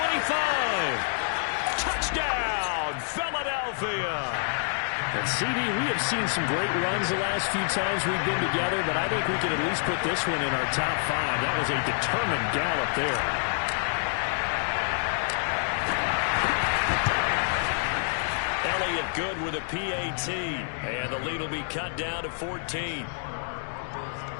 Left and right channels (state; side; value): silent; right; digital silence